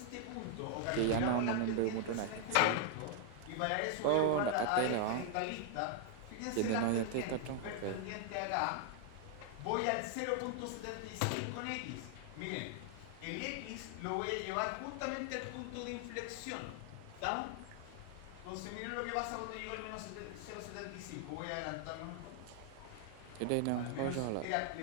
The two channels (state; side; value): different; both; correlation 0.00